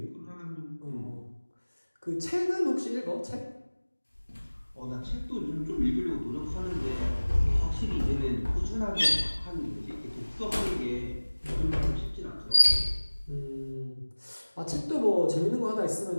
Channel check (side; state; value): both; inverted; correlation -1.00